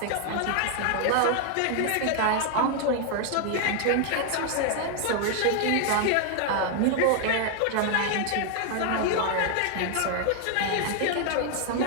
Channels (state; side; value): different; both; correlation 0.00